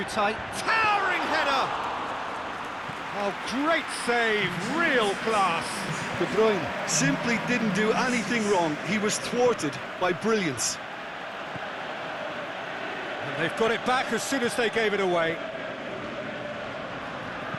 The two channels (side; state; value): both; identical; correlation 1.00